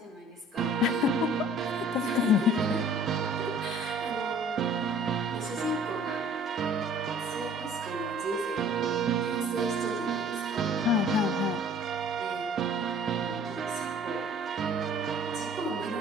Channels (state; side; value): normal; both; correlation 0.51